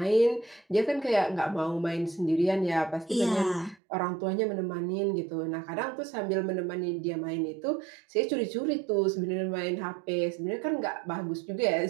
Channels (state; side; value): drops out; left; at 3.8 s